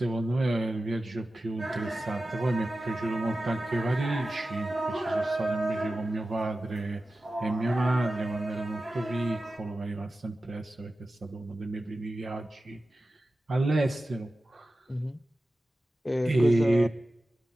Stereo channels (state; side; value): normal; both; correlation 0.94